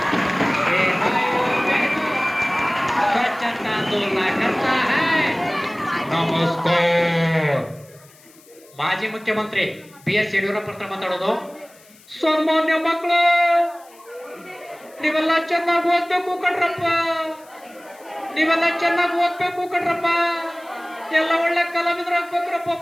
स्वच्छता आंदोलन करता है। ನಮಸ್ಕಾರ. ಮಾಜಿ ಮುಖ್ಯಮಂತ್ರಿ BS ಯಡಿಯೂರಪ್ಪ ಹತ್ರ ಮಾತಾಡೋದು. ಸಾಮಾನ್ಯ ಮಕ್ಕಳು, ನೀವೆಲ್ಲ ಚೆನ್ನಾಗಿ ಓದ್ಬೇಕು ಕಣ್ರಪ್ಪ, ನೀವೆಲ್ಲ ಚೆನ್ನಾಗಿ ಓದ್ಬೇಕು ಕಣ್ರಪ್ಪ, ಎಲ್ಲ ಒಳ್ಳೆ ಕಲಾವಿದರಾಗ್ಬೇಕ್ರಪ್ಪ.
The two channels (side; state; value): left; noise; hiss, 26 dB below the sound